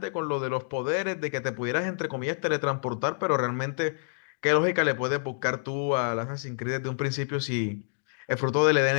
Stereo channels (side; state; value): right; silent; digital silence